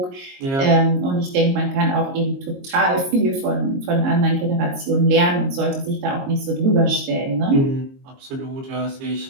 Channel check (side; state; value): left; late; 22 ms